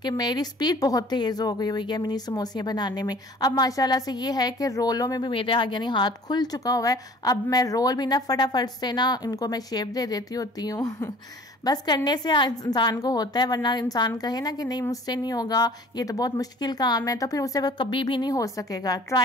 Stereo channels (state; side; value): normal; both; correlation 0.49